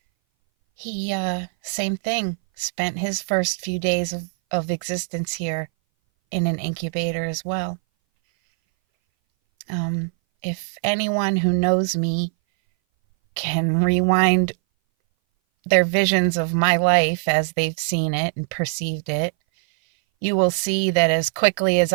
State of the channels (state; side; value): silent; left; 60 dB below the other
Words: He, same thing, spent his first few days of existence here in an incubator as well. If anyone who knows me can rewind their visions of my life as they've seen it and perceived it, you will see that as quickly as